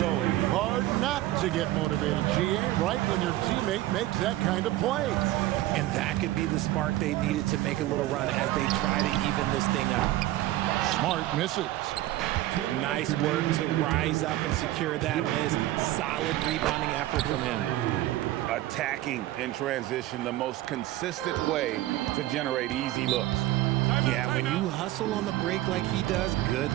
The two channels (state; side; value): quieter; left; 15.7 dB